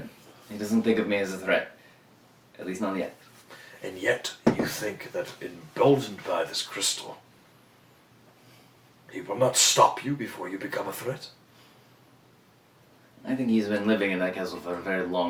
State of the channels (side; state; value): both; identical; correlation 1.00